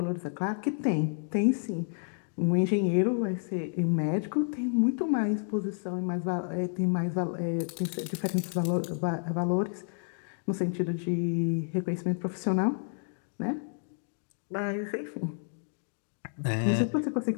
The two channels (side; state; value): right; silent; 58 dB below the other